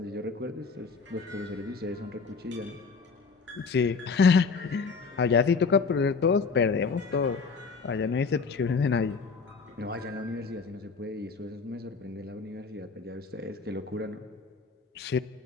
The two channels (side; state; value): right; quieter; 4.9 dB